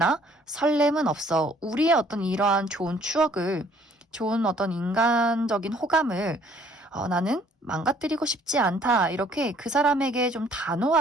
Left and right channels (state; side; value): normal; both; correlation 0.59